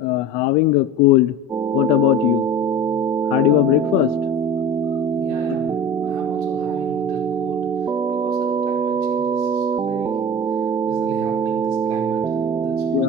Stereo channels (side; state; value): both; normal; correlation 0.35